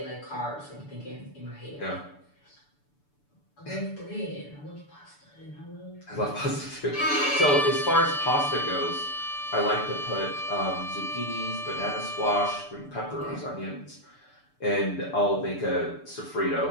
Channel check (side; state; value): right; late; 6.9 ms